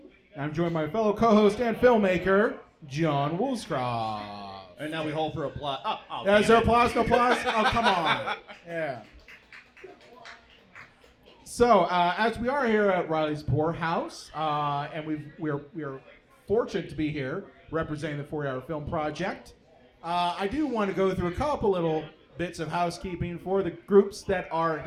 I'm joined by my fellow co-host and filmmaker, John Woolscroft. And now we hold for applause. Is there applause? No applause? Oh, come on. Yeah. So, as we are here at Riley's Poorhouse, and we're fortunate to be here representing the 40-Hour Film Project, I do want to go through a couple little bits of housekeeping for the groups that are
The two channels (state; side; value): identical; both; correlation 1.00